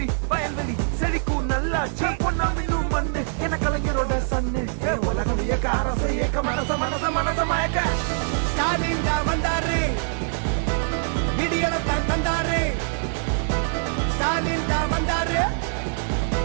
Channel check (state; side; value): silent; left; digital silence